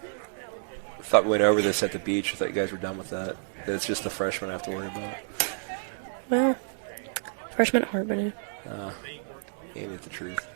thought we went over this at the beach. I thought you guys were done with that. That it's just the freshmen I have to worry about. Well, freshman at Harbin. Ain't it the truth?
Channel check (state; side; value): silent; left; digital silence